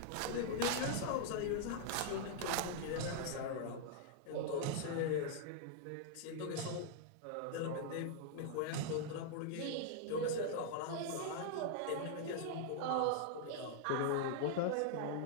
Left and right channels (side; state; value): both; different; correlation -0.01